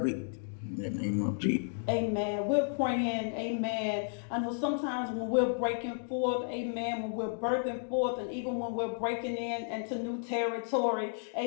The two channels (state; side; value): silent; right; digital silence